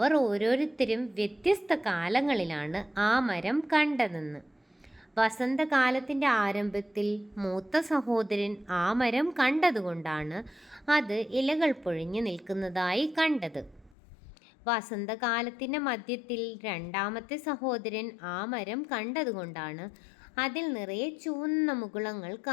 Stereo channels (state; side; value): drops out; right; at 14.0 s